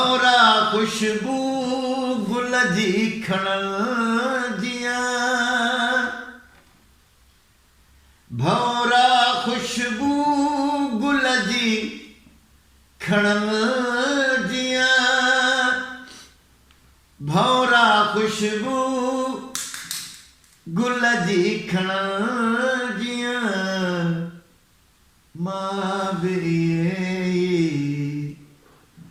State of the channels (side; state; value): both; identical; correlation 1.00